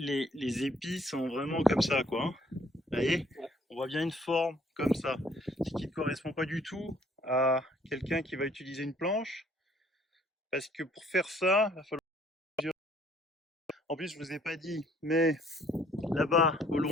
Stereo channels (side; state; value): both; normal; correlation 0.61